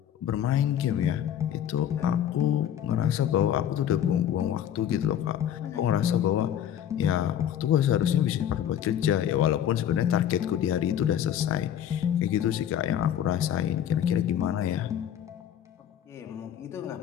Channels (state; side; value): quieter; right; 10.1 dB